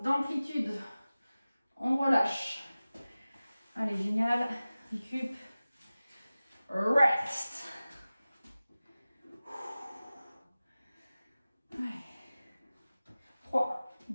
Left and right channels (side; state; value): both; inverted; correlation -0.97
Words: On relâche. Allez, génial. Récup. rest. Allez. 3,